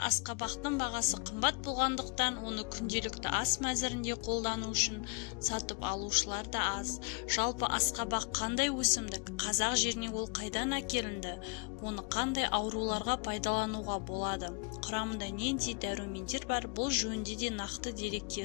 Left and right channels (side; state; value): right; quieter; 33.8 dB